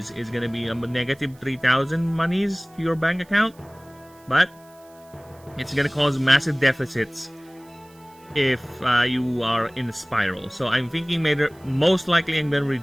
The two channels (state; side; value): noise; right; hiss, 28 dB below the sound